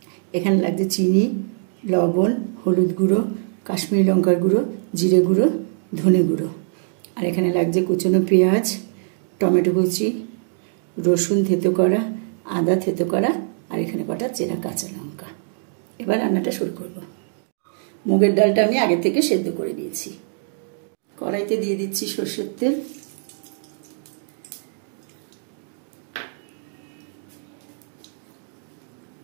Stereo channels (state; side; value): silent; left; digital silence